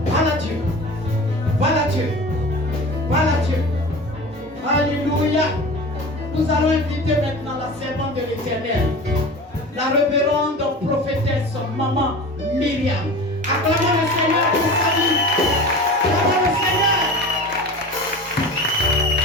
Parle à Dieu. Parle à Dieu. Parle à Dieu. Alléluia. Nous allons inviter maintenant la servante de l'Éternel, la révérende prophétesse maman Myriam. Acclamons le Seigneur pour sa vie. Acclamons le Seigneur.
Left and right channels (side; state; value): both; normal; correlation 0.35